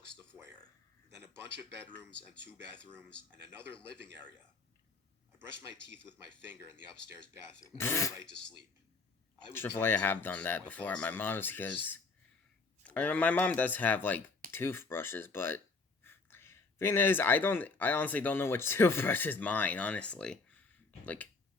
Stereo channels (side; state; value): right; quieter; 4.0 dB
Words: the foyer, then a bunch of bedrooms and 2 bathrooms and another living area. I brushed my teeth with my finger in the upstairs bathroom and went right to sleep. I have done that before at my mom's because my mom does have like toothbrushes, but thing is, I honestly don't know which toothbrush is mine. Honestly, like